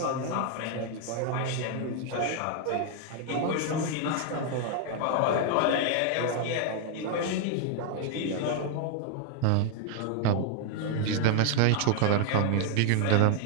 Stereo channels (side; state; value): both; different; correlation 0.00